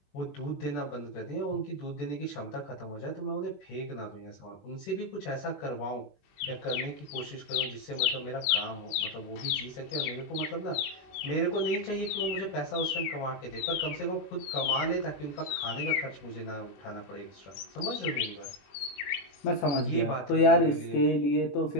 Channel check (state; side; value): late; right; 22 ms